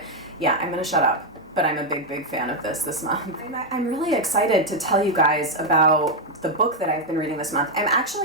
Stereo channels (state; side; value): normal; both; correlation 0.02